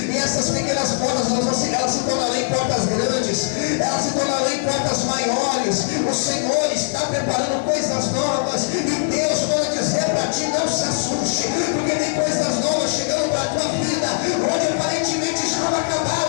essas pequenas portas elas se tornarão em portas grandes, elas se tornarão em portas maiores. O Senhor está preparando coisas novas, e Deus manda dizer para ti: não se assuste, porque tem coisas novas chegando para a tua vida. Onde aparentemente estava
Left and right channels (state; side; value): silent; right; 64 dB below the other